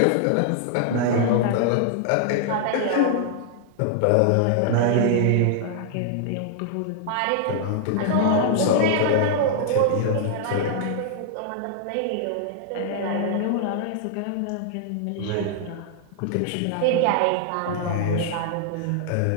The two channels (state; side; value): different; both; correlation -0.01